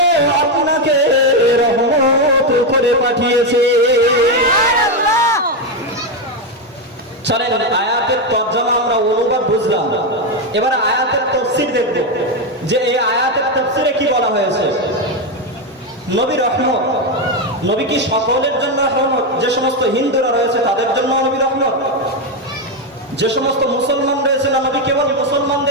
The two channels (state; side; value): normal; both; correlation 0.07